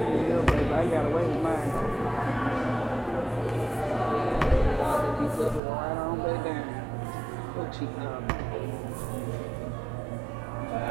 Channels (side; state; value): left; drops out; at 5.6 s